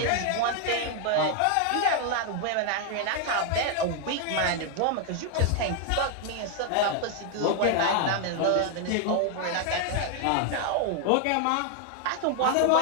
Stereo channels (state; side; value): different; both; correlation 0.00